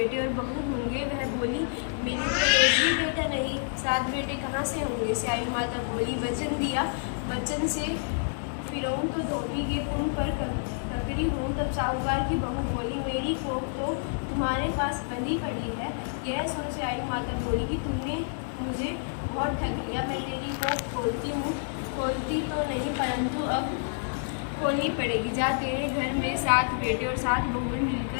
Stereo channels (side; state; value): right; silent; digital silence